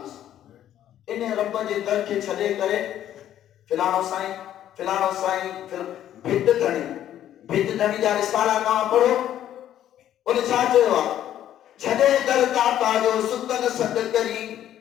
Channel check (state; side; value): quieter; right; 11.4 dB